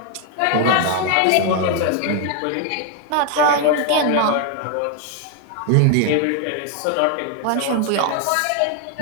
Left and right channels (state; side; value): different; both; correlation 0.00